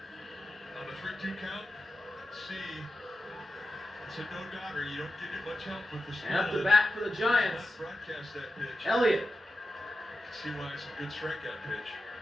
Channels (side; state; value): both; normal; correlation 0.92